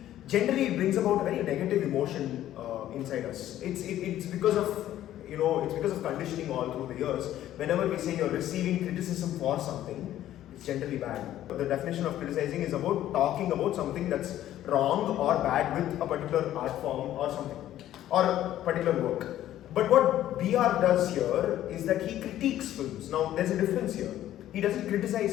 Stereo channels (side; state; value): right; quieter; 12.8 dB